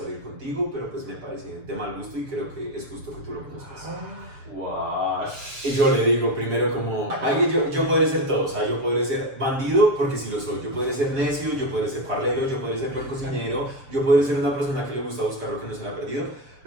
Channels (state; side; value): late; left; 7.4 ms